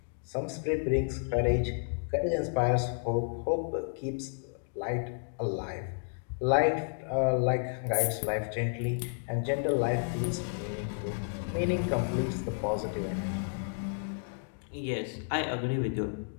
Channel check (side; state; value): right; silent; digital silence